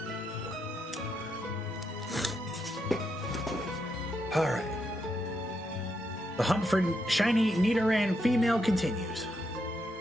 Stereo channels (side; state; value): both; normal; correlation 0.81